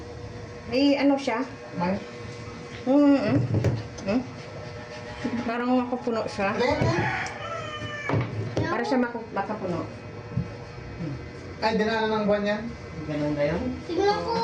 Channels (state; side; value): identical; both; correlation 1.00